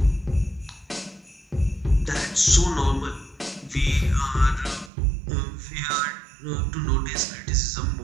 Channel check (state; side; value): drops out; left; at 4.9 s